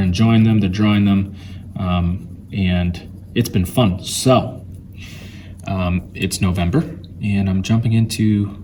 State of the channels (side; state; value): both; identical; correlation 1.00